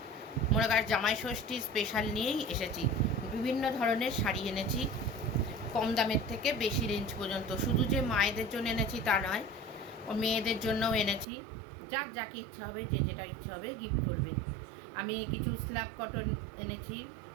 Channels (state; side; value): drops out; left; at 11.2 s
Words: মনে কর জামাই ষষ্ঠী স্পেশাল নিয়েই এসেছি। বিভিন্ন ধরনের শাড়ি এনেছি, কম দামের থেকে বেশি রেঞ্জ পর্যন্ত। শুধু যে মায়েদের জন্য এনেছি তা নয়, ও মেয়েদের জন্যও এনেছি। যার যাকে ইচ্ছা হবে, যে যেটা ইচ্ছা হবে গিফট করবে। আমি কিছু স্ল্যাব কটন এনেছি,